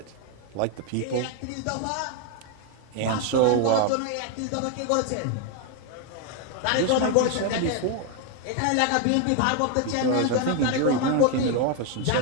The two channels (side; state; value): both; different; correlation 0.01